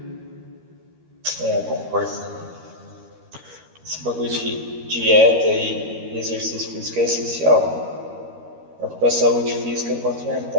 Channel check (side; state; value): left; late; 13 ms